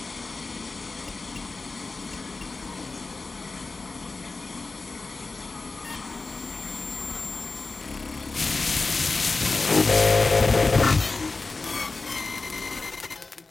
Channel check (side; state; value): right; quieter; 3.8 dB